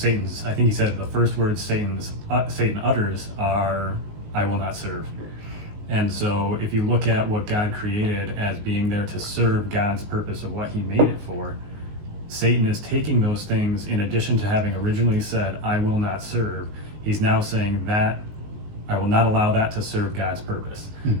I think he said the first words Satan utters are, "I will not serve." And so if you look at what God created as being there to serve God's purpose of what he made it for, Satan is taking those things, in addition to having originally said, "I will not serve," he's now saying that I will not allow that to serve God's purpose.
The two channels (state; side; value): late; left; 19 ms